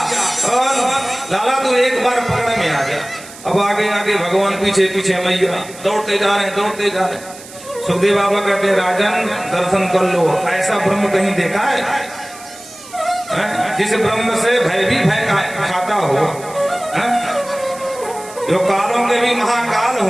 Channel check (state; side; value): noise; right; hiss, 18 dB below the sound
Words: और लाला तू एक बार पकड़ में आ गया। अब आगे आगे भगवान पीछे पीछे, मैया दौड़ते जा रहे, दौड़ते जा रहे। सुखदेव बाबा कहते राजन दर्शन कर लो, ऐसा ब्रह्म कहीं देखा है? जिस ब्रह्म से भय भी भय खाता हो, जो कालों के भी महाकाल